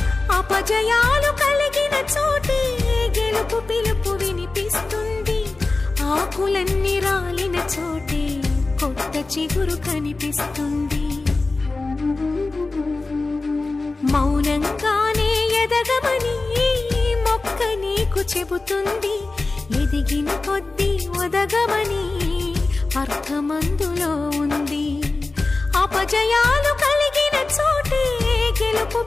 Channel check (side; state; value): right; quieter; 3.4 dB